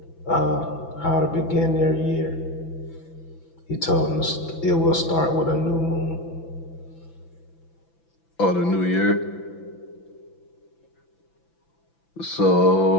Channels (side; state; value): right; late; 6.0 ms